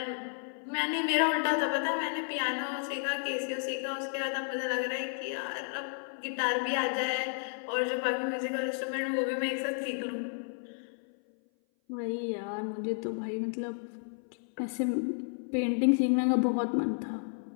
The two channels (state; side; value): silent; right; 56 dB below the other